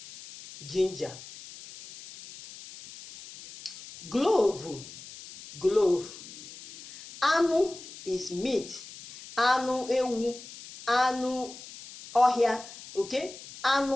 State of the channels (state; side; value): noise; left; hiss, 16 dB below the sound